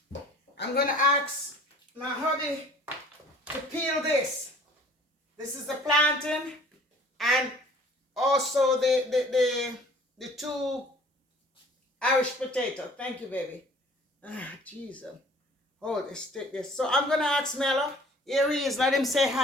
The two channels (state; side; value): normal; both; correlation 0.51